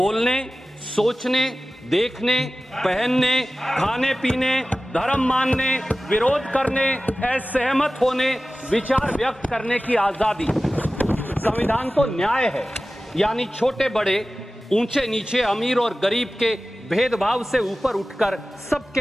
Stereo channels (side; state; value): both; normal; correlation 0.96